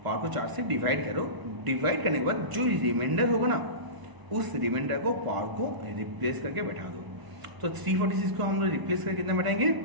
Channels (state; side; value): late; left; 1.0 ms